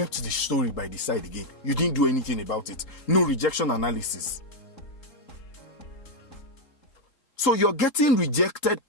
the story by the side again. You didn't do anything about it. No rejection analysis. So you're getting rejected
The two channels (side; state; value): right; late; 3.7 ms